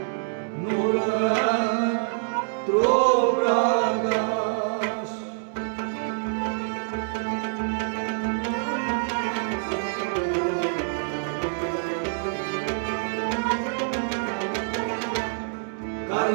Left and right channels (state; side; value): silent; left; digital silence